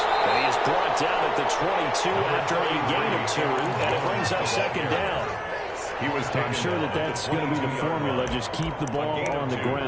And he is brought down at the 22 after a gain of 2, and it brings up 2nd down. I'm sure that's going to be the formula. Just keep the ball on the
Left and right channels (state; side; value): identical; both; correlation 1.00